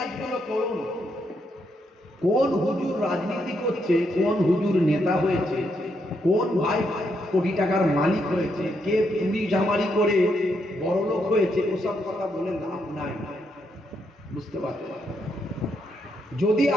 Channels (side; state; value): both; normal; correlation 0.78